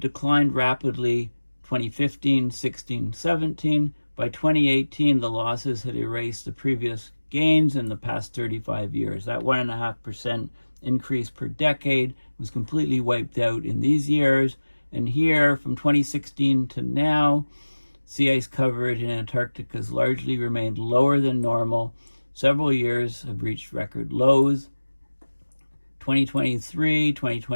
rapidly 2015, 16, 17. By 2018, the losses had erased the previous gains in the past 35 years. That 1.5% increase per decade was completely wiped out in these years. And here, from 2016 to now, sea ice coverage in Antarctica has largely remained lower than normal. Several years have reached record lows. 2023,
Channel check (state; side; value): inverted; both; correlation -1.00